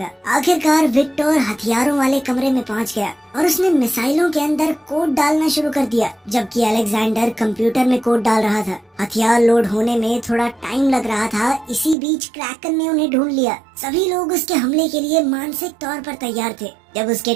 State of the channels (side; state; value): left; drops out; at 12.0 s